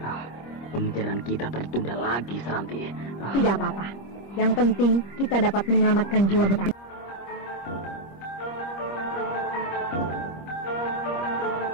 Pengejaran kita tertunda lagi, Seranti. Tidak apa-apa. Yang penting kita dapat menyelamatkan jiwa Bentang.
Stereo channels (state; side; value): late; right; 25 ms